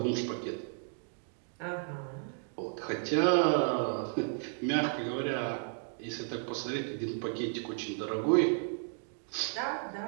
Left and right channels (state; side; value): silent; left; 55 dB below the other